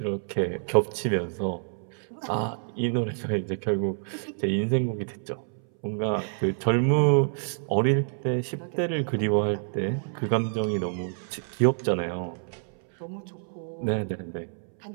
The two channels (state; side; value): silent; left; 60 dB below the other